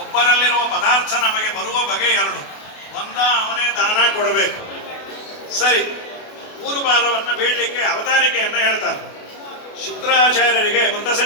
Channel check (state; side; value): late; right; 28 ms